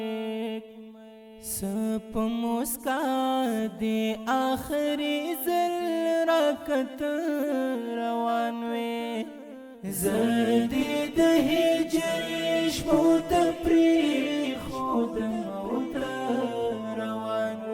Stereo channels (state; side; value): identical; both; correlation 1.00